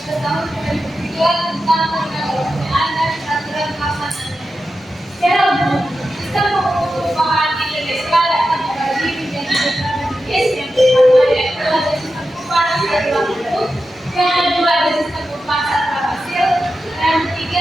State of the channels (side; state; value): both; normal; correlation 0.91